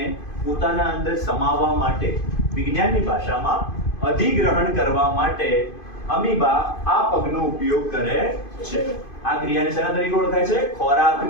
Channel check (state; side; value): late; right; 2.5 ms